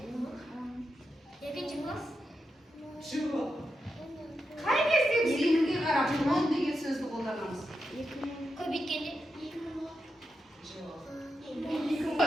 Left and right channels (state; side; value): normal; both; correlation 0.87